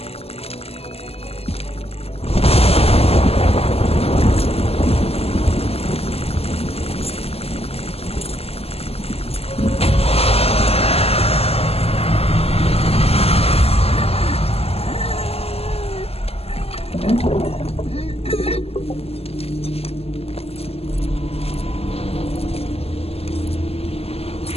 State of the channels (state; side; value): late; right; 0.29 ms